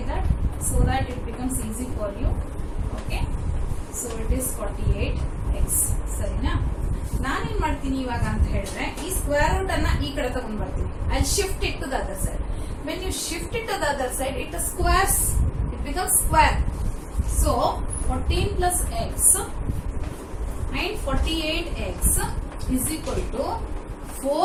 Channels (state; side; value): identical; both; correlation 1.00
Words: that, so that it becomes easy for you. Okay, so it is 48x. ಸರಿನಾ? ನಾನೇನ್ ಮಾಡ್ತೀನಿ ಇವಾಗ ಅಂತ ಹೇಳಿದ್ರೆ, ಈ square root ಅನ್ನ ಈ ಕಡೆ ತಗೊಂಡ್ ಬರ್ತೀನಿ. I shift it to the other side. When you shift it to the other side, it squares, it becomes square. So 14 plus x and 48x is equal to